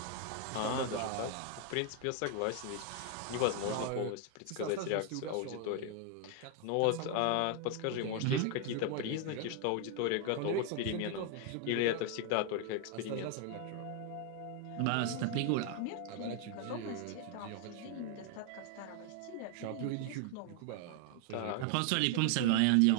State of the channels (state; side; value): different; both; correlation 0.00